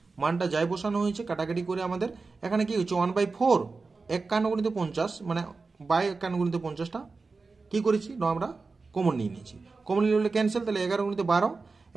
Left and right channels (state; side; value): quieter; left; 4.1 dB